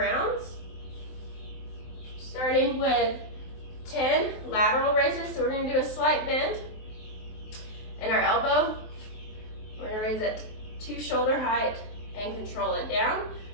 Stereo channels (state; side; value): late; right; 23 ms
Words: starting with 10 lateral raises. So we're going to do a slight bend in our elbow. We're going to raise it to shoulder height and control it down.